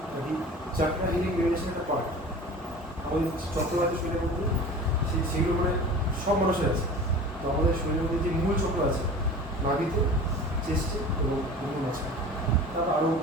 আর কি চাকরা হিলিং মেডিটেশন একটা পার্ট। আমাদের চক্রবাতি শরীরের মধ্যে সেগুলো মানে সব মানুষের আছে। তো আমাদের শরীরের মধ্যে যে মূল চক্র আছে নাভিতে, চেস্টে এবং মুখের মাঝখানে, তারপর আরও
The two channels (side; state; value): both; normal; correlation 0.38